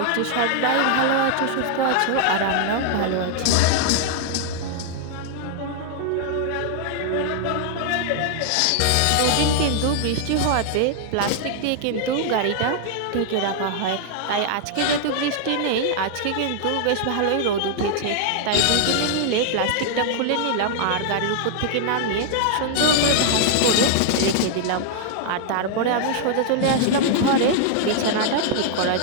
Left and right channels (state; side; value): different; both; correlation 0.00